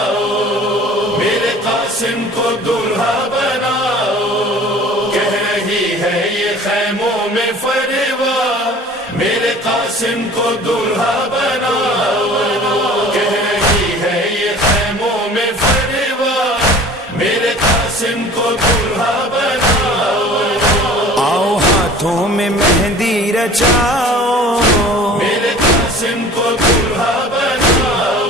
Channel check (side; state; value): both; normal; correlation 0.45